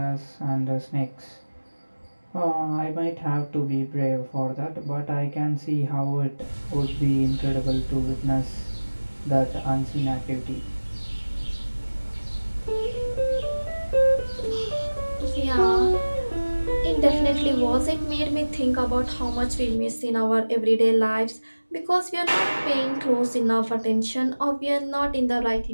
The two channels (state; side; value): inverted; both; correlation -1.00